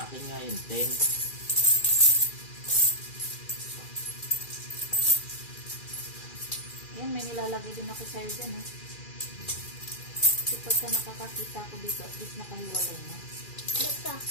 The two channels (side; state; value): right; late; 2.4 ms